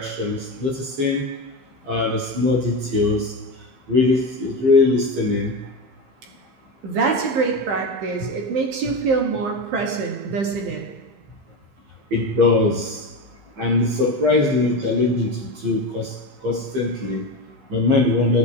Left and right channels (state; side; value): late; left; 15 ms